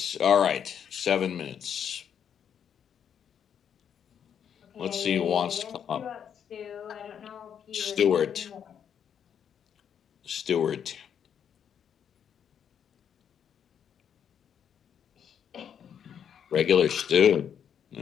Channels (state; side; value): quieter; right; 8.3 dB